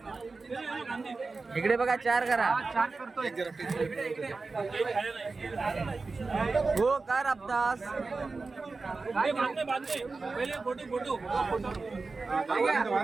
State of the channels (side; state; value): left; quieter; 3.9 dB